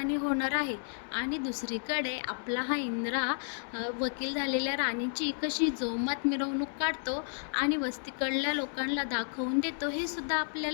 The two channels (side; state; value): right; silent; 56 dB below the other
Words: होणार आहे. आणि दुसरीकडे आपला हा इंद्रा वकील झालेल्या राणीची कशी जोमात मिरवणूक काढतो आणि वस्तीकडल्या लोकांना दाखवून देतो, हे सुद्धा